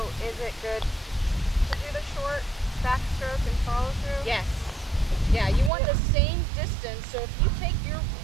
is it good to do the short backstroke and follow through? Yes. Yeah, you want the same distance. So if you take your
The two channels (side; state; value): left; drops out; at 5.7 s